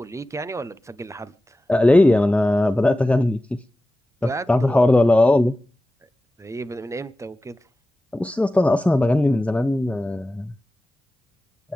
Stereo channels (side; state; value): both; normal; correlation 0.95